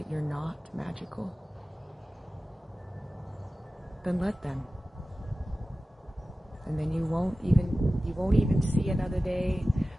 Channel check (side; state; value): both; normal; correlation 0.95